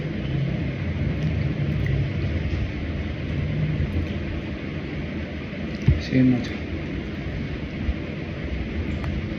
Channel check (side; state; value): both; identical; correlation 1.00